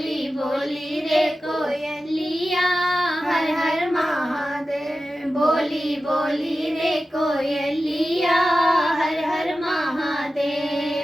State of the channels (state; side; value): normal; both; correlation 0.94